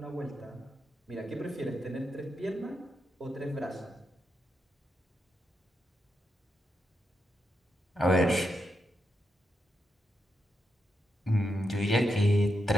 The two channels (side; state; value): both; normal; correlation 0.84